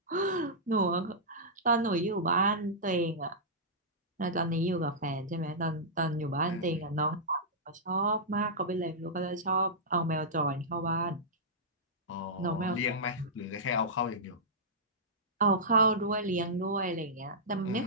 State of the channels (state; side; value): normal; both; correlation -0.13